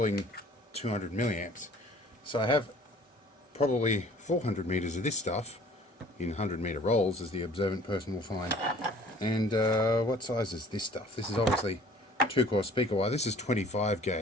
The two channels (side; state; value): both; normal; correlation 0.52